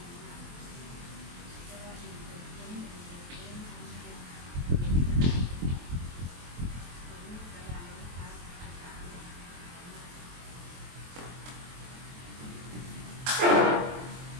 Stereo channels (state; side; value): late; left; 23 ms